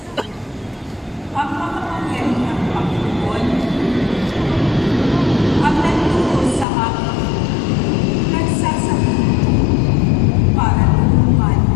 Ang makapangyarihang Panginoon, ang nagturo sa akin, nagsasabi para tulungan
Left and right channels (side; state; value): right; drops out; at 6.7 s